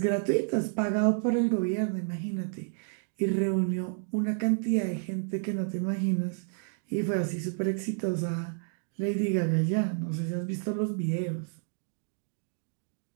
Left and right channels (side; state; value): left; silent; 58 dB below the other